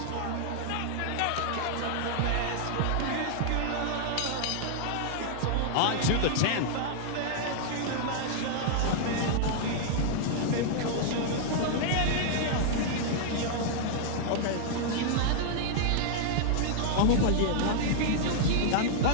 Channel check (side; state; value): both; different; correlation -0.01